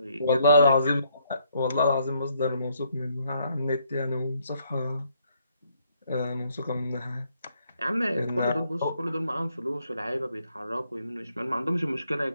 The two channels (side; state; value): both; inverted; correlation -0.71